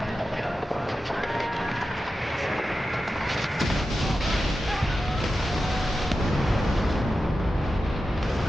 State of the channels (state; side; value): normal; both; correlation 0.92